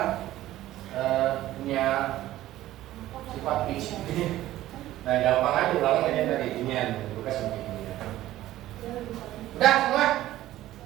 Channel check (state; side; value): quieter; left; 14.7 dB